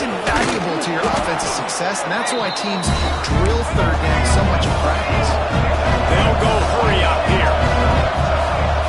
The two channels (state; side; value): identical; both; correlation 1.00